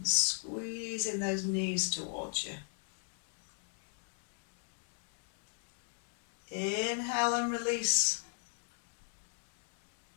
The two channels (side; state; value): right; silent; 53 dB below the other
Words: squeezing those knees towards you. Inhale and release.